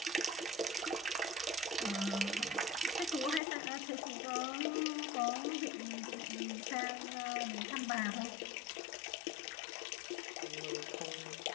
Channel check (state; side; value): drops out; right; at 3.4 s